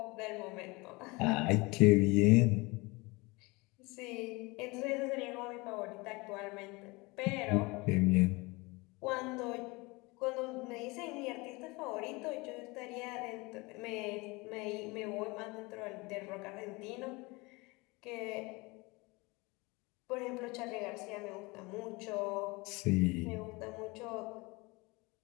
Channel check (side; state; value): right; quieter; 24.9 dB